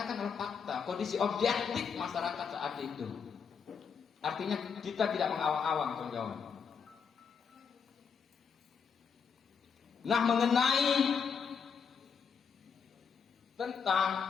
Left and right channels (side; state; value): right; quieter; 6.4 dB